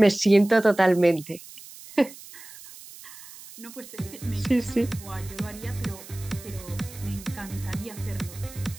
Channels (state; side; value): noise; right; hiss, 17 dB below the sound